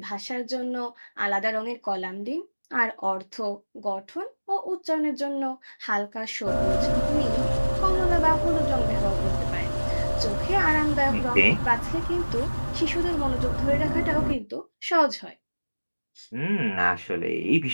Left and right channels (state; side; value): inverted; both; correlation -1.00